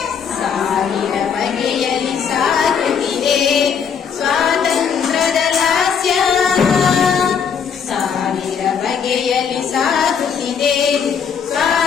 ಸಾವಿರ ಬಗೆಯಲ್ಲಿ ಸಾಗುತ್ತಿದೆ ಸ್ವಾತಂತ್ರ್ಯದ ಲಾಸ್ಯ, ಸಾವಿರ ಬಗೆಯಲ್ಲಿ ಸಾಗುತ್ತಿದೆ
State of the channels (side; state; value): right; quieter; 7.0 dB